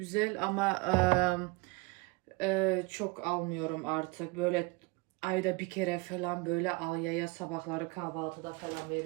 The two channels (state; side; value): quieter; left; 25.1 dB